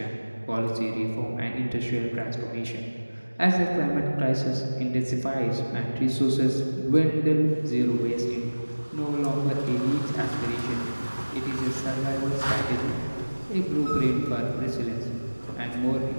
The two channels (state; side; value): inverted; both; correlation -1.00